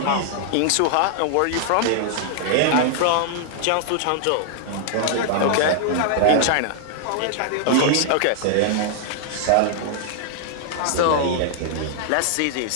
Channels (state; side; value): different; both; correlation -0.01